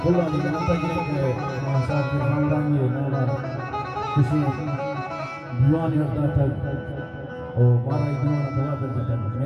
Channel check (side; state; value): both; identical; correlation 1.00